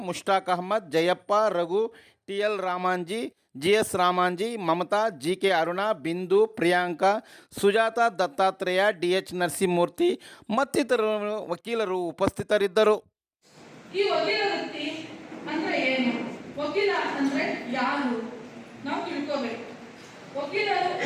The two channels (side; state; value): both; identical; correlation 1.00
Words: Mushtaq Ahmed, Jayappa, Raghu, TL Ramanji, GS Ramanji, Mamata, GK Aruna, Bindu, Priyanka, Sujatha, Dattatreya, DH Narasimhamurthy ಮತ್ತಿತರರು ವಕೀಲರು ಉಪಸ್ಥಿತರಿದ್ದರು. ಈ ವಕೀಲ ವೃತ್ತಿ ಅಂದ್ರೆ ಏನು? ವಕೀಲ ಅಂದ್ರೆ ಯಾರು ನಾವು ತಿಳ್ಕೋಬೇಕು. ವಕೀಲರು